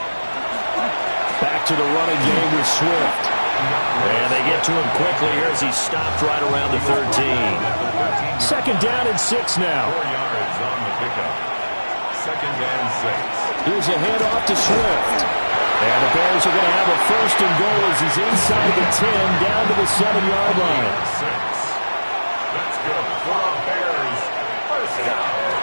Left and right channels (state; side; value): inverted; both; correlation -1.00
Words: Back to the running game with Swift. And they get to him quickly here as he's stopped right around the 13. 2nd down and 6 now. 4 yards on the pickup. 2nd and 6. Here's a handoff to Swift. And the Bears are going to have a 1st and goal as he's inside the 10 down to the 7-yard line. 6. That's good for a Bears first down.